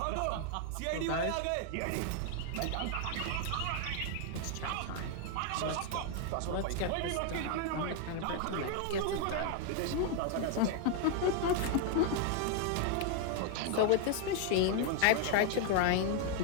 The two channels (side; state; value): both; different; correlation 0.00